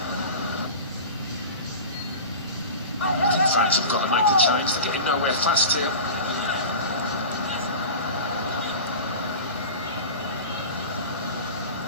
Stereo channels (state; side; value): inverted; both; correlation -0.33